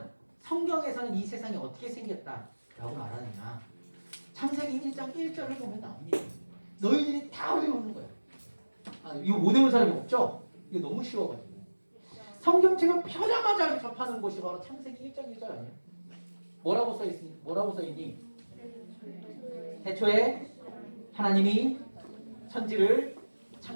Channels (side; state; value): both; inverted; correlation -1.00